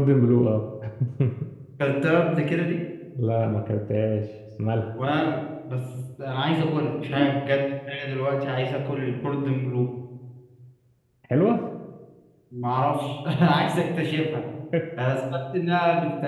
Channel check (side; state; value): both; identical; correlation 1.00